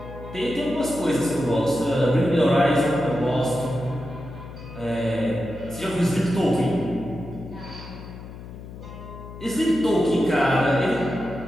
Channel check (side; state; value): left; noise; hum, 13 dB below the sound